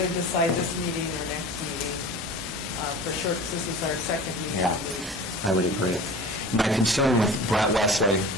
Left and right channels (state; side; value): normal; both; correlation 0.38